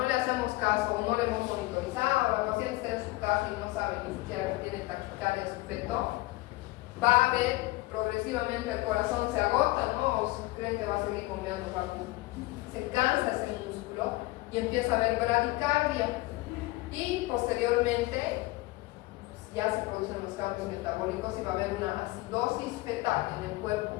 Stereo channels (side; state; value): right; quieter; 20.5 dB